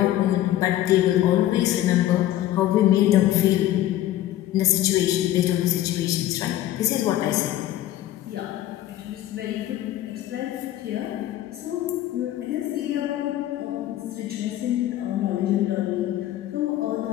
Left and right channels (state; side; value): quieter; right; 13.6 dB